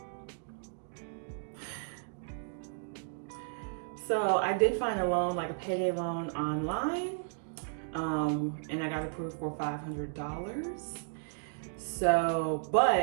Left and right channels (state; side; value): silent; left; digital silence